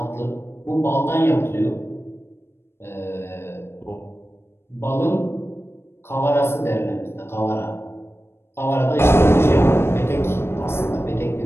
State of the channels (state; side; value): late; right; 0.12 ms